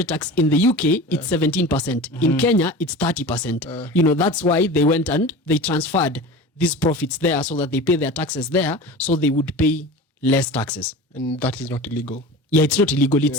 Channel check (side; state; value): both; normal; correlation 0.34